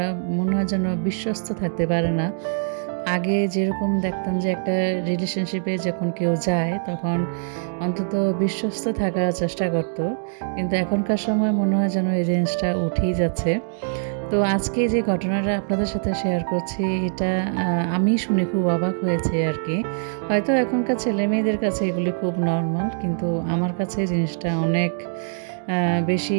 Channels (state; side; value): silent; left; digital silence